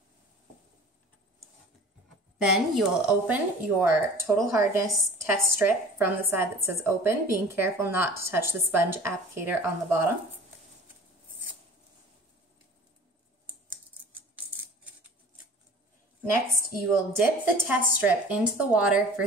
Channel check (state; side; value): normal; both; correlation 0.44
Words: Then you will open your total hardness test strip from the side that says open, being careful not to touch the sponge applicator on the bottom. Next, you will dip the test strip into the water for